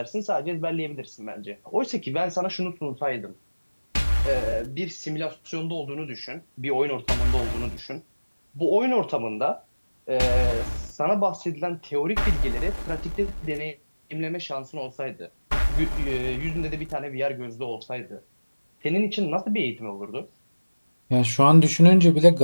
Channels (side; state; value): both; inverted; correlation -1.00